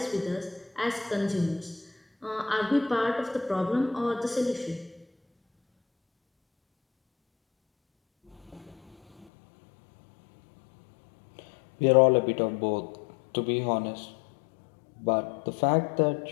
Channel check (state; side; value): drops out; right; at 9.2 s